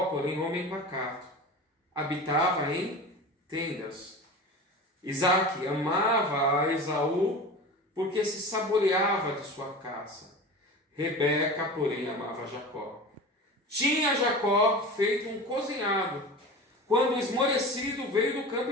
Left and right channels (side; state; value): both; normal; correlation 0.32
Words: porém, homem pacato, habitava em tendas. Isaque amava a Esaú porque se saboreava de sua caça. Rebeca, porém, amava Jacó. Tinha Jacó feito um cozinhado, quando esmorecido veio do campo